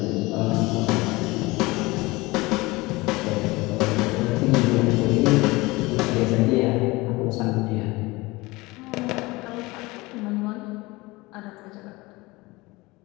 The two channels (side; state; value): right; quieter; 22.2 dB